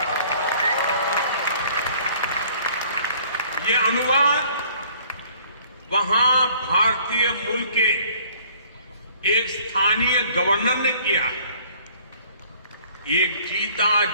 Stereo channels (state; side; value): inverted; both; correlation -0.56